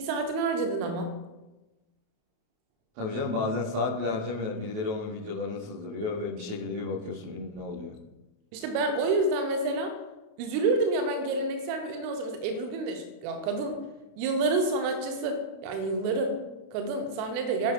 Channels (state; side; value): late; left; 28 ms